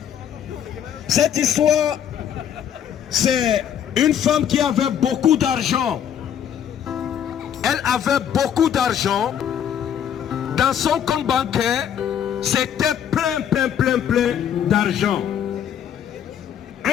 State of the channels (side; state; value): right; quieter; 9.3 dB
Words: Cette histoire, c'est une femme qui avait beaucoup d'argent. Elle avait beaucoup d'argent. Dans son compte bancaire, c'était plein d'argent.